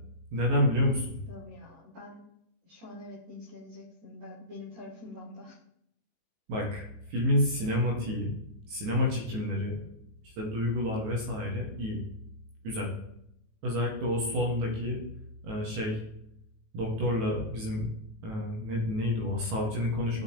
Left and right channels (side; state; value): left; late; 19 ms